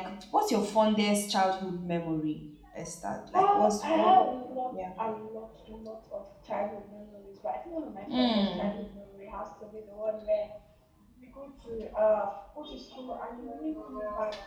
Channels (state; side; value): identical; both; correlation 1.00